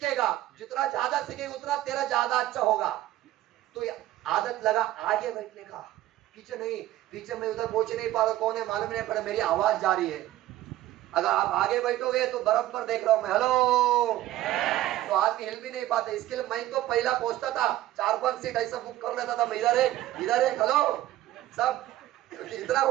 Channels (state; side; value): quieter; left; 14.7 dB